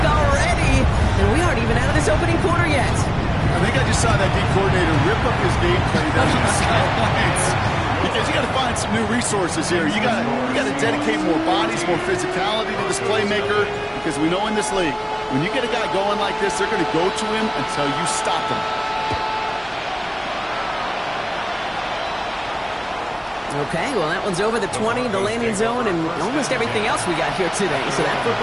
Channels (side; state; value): both; identical; correlation 1.00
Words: already. And we aren't even out of this opening quarter yet. I think I just saw that D coordinator rip up his gameplay down on the sidelines. Because you got to find some new resources here. You got to dedicate more bodies, more physicality to this playmaker. Because we know in this league, when you get a guy going like this, they're going to go to him until you stop him. Okay, well, that one's over the 20, the landing zone, and almost everything else we got here today. So that